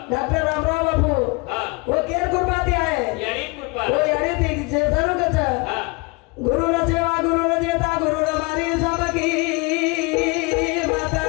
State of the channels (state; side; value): quieter; right; 27.5 dB